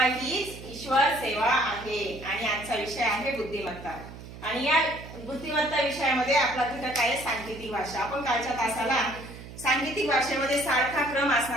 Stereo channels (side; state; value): right; noise; hum, 14 dB below the sound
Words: हीच ईश्वर सेवा आहे आणि आजचा विषय आहे बुद्धिमत्ता। आणि या बुद्धिमत्ता विषयामध्ये आपला घटक आहे सांकेतिक भाषा। आपण कालच्या तासाला सांकेतिक भाषेमध्ये सारखा क्रम